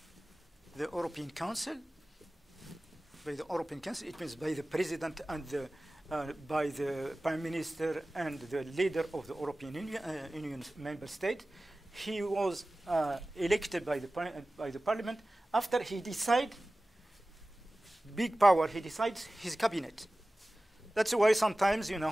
the European Council. By the European Council, it means by the president and by the prime minister and the leader of the European Union member state. He was elected by the parliament. After he decides, big power, he decides his cabinet. That's why sometimes,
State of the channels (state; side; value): normal; both; correlation 0.97